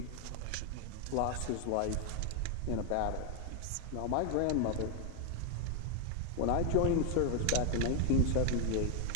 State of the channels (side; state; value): both; different; correlation 0.00